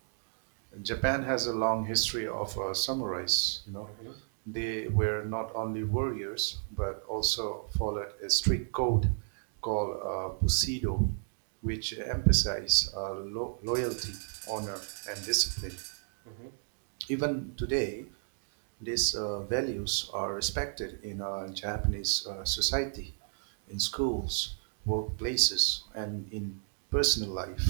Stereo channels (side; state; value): left; silent; digital silence